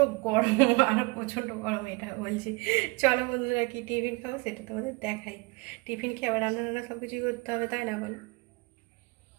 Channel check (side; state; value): left; quieter; 26.5 dB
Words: গরম, আর প্রচণ্ড গরম এটা বলছি। চলো বন্ধুরা, কি টিফিন খাবো সেটা তোমাদের দেখাই। টিফিন খেয়ে আবার রান্না সব কিছুই করতে হবে, তাই না বলো?